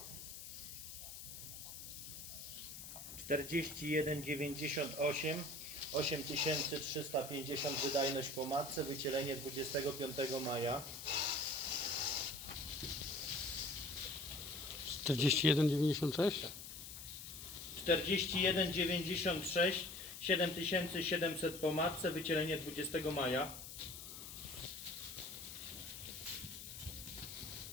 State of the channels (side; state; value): left; noise; hiss, 11 dB below the sound